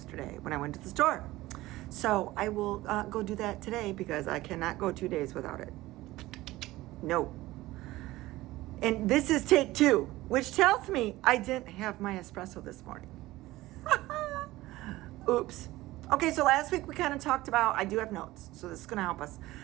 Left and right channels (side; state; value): left; quieter; 17.8 dB